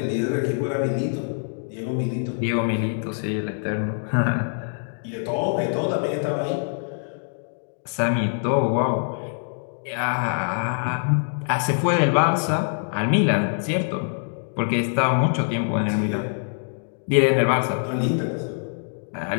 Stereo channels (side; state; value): right; silent; digital silence